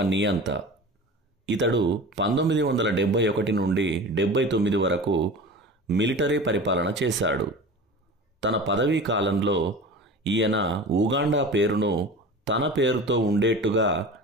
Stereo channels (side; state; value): both; normal; correlation 0.35